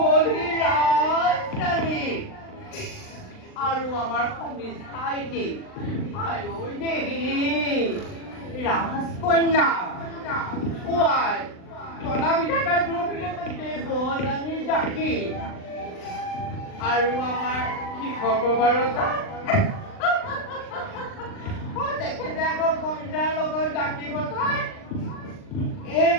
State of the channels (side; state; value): right; late; 39 ms